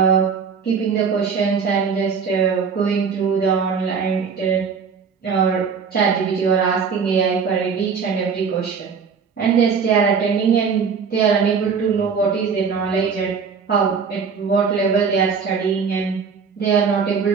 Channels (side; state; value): left; quieter; 5.9 dB